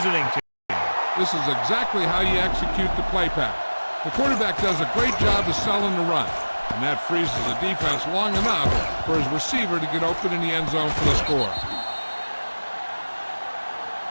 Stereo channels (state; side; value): inverted; both; correlation -1.00